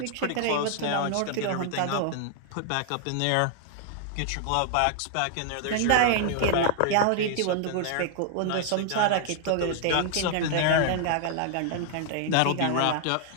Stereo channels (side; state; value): both; different; correlation 0.00